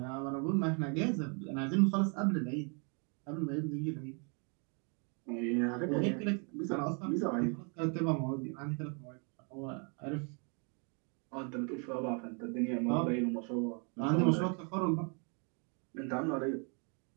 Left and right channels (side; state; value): left; quieter; 37.1 dB